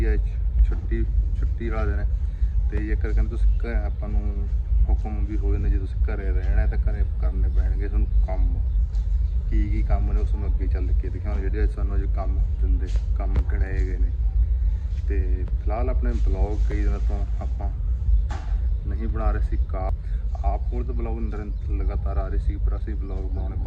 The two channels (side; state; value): both; identical; correlation 1.00